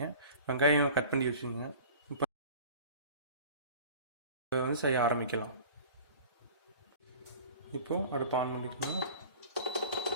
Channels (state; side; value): inverted; both; correlation -0.41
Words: வெங்காயம் கட் பண்ணி வச்சுக்கோங்க. இப்போ செய்ய ஆரம்பிக்கலாம். இப்போ அடுப்பு ஆன் பண்ணிக்கணும்.